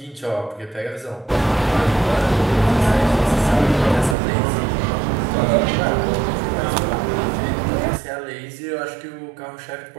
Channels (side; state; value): left; drops out; at 4.2 s